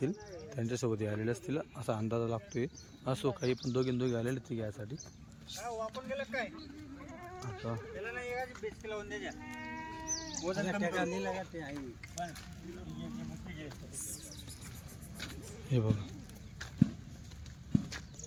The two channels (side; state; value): both; identical; correlation 1.00